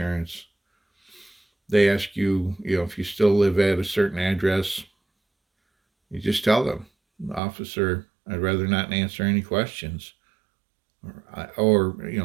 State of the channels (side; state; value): left; drops out; at 7.4 s